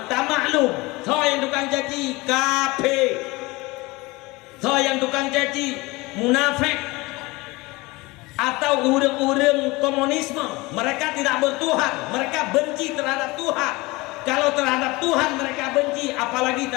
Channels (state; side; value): quieter; right; 22.8 dB